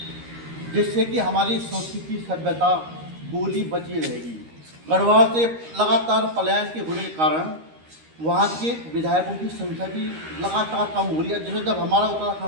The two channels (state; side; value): late; left; 13 ms